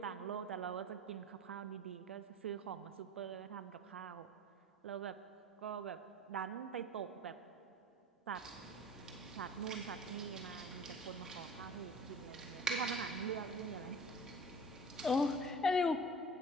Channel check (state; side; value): normal; both; correlation 0.42